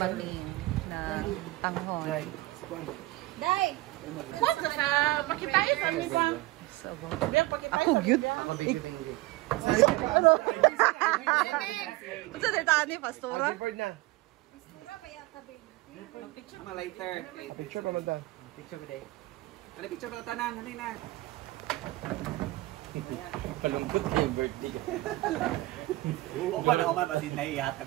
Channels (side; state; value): left; quieter; 19.9 dB